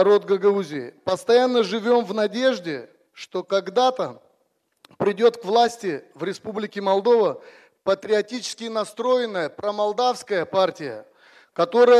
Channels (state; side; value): identical; both; correlation 1.00